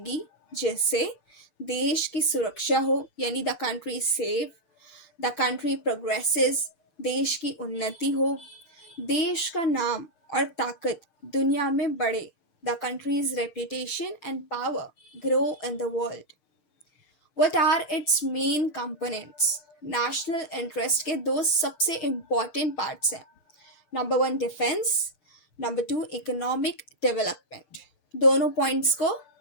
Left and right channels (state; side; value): late; right; 6.6 ms